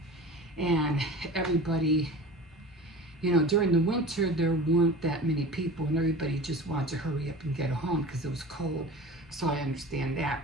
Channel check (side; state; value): both; normal; correlation 0.36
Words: and everybody, during the winter, there weren't that many people, and everybody just wanted to hurry up and get home because it was cold. So I understand that.